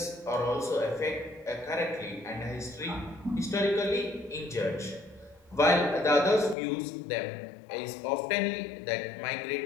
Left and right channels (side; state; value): right; drops out; at 6.6 s